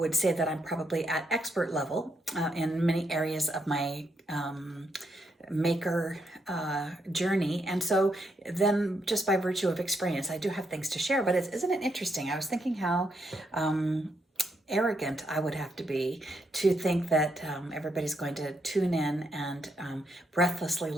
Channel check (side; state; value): both; normal; correlation 0.78